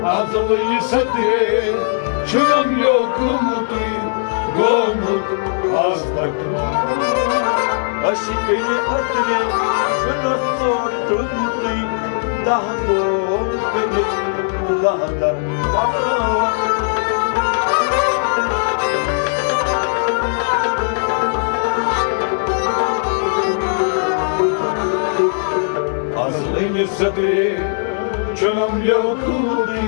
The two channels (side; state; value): right; silent; digital silence